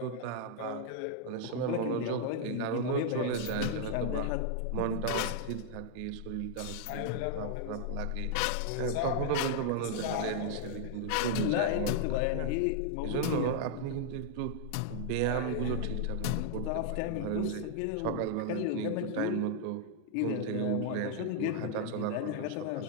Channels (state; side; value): different; both; correlation -0.01